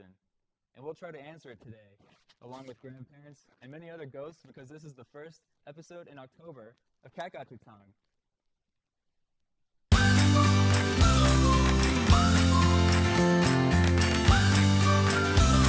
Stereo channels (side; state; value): both; identical; correlation 1.00